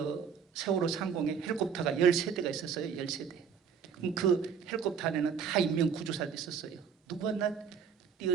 세월호 상공에 헬리콥터가 13대가 있었어요. 13대. 그럼 그 헬리콥터 안에는 다 인명구조사들이 있었어요. 누구 하나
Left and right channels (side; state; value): left; quieter; 6.9 dB